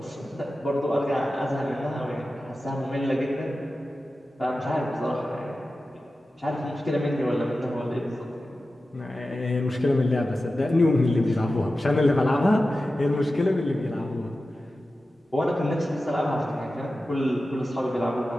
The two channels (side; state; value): both; normal; correlation 0.94